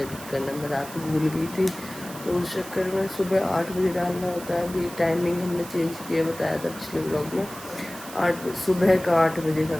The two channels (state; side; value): noise; right; hiss, 14 dB below the sound